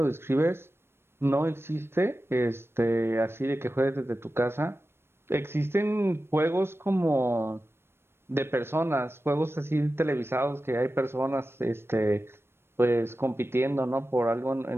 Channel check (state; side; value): late; left; 0.12 ms